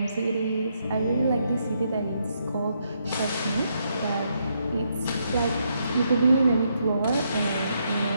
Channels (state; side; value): inverted; both; correlation -0.77